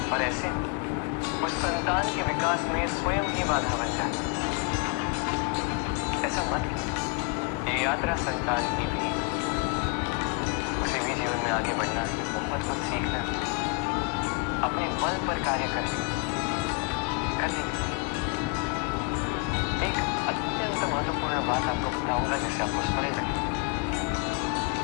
और ऐसे उस संतान के विकास में स्वयं ही बाधा बन जाते हैं। ऐसा मत कीजिए। ये यात्रा संतान की भी, उसे भी जीवन में आगे बढ़ना है, बहुत कुछ सीखना है, अपने बल पर कार्य करने एक अत्यंत महत्वपूर्ण बात आपको बताऊंगा जिसे आपको स्मरण रखें।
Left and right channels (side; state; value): right; quieter; 29.9 dB